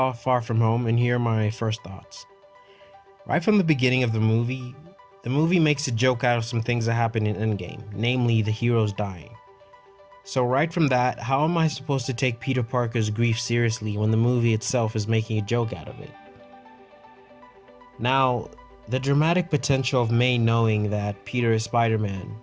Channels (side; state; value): both; identical; correlation 1.00